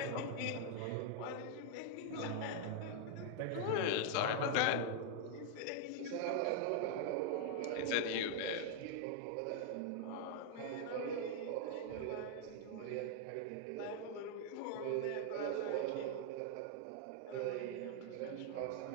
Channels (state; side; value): different; both; correlation 0.00